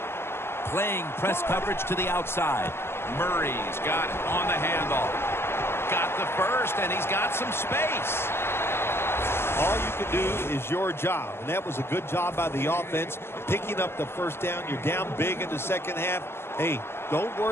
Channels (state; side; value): late; right; 0.12 ms